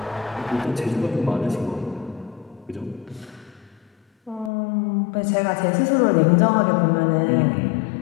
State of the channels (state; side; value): drops out; right; at 4.5 s